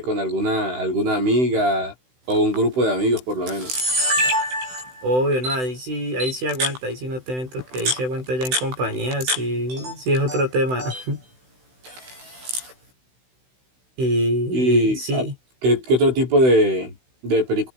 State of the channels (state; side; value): late; left; 16 ms